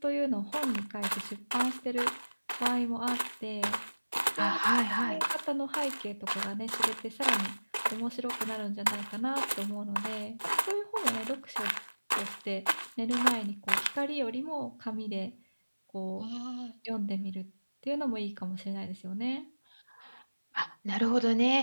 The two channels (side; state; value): both; inverted; correlation -1.00